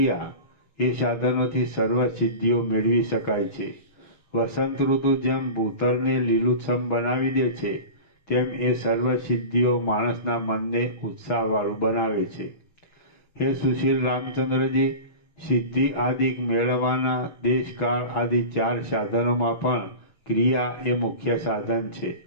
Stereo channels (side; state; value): right; late; 6.2 ms